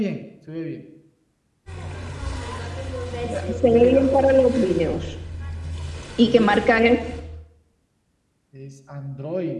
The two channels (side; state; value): both; identical; correlation 1.00